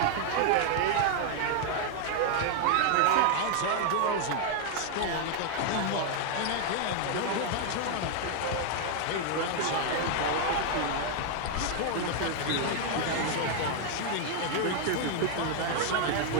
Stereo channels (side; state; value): both; different; correlation 0.00